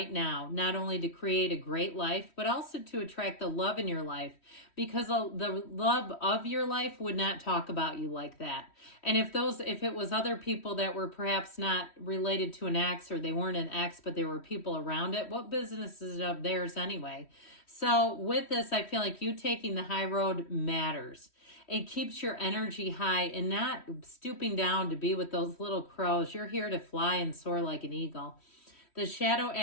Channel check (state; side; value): late; right; 3.1 ms